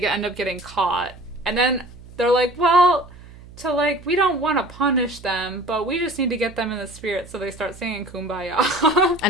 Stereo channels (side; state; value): right; noise; hum, 19 dB below the sound